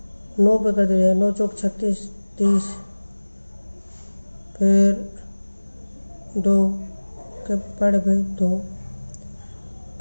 9 पे कर देते हैं 9 चौक 36 30। फिर 2 के पहाड़े पे 2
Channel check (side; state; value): both; inverted; correlation -1.00